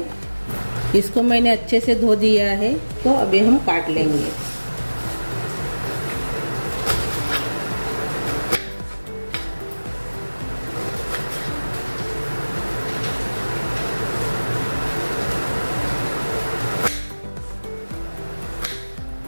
इसको मैंने अच्छे से धो दिया है। तो अभी हम काट लेंगे।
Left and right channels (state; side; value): inverted; both; correlation -1.00